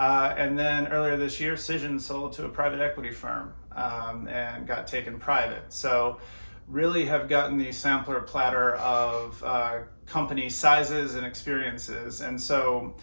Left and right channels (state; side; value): inverted; both; correlation -1.00